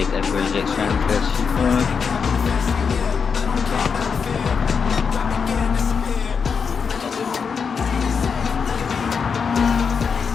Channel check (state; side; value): quieter; right; 6.0 dB